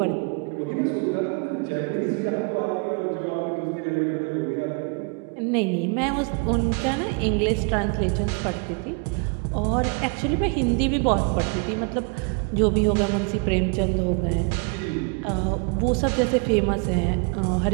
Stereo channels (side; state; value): left; quieter; 33.9 dB